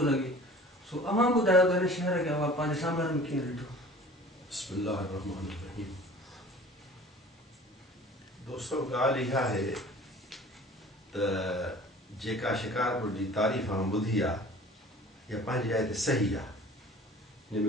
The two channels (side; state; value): both; normal; correlation 0.45